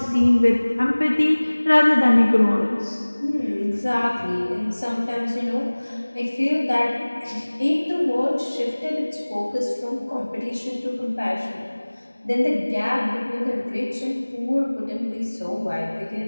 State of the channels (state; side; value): inverted; both; correlation -1.00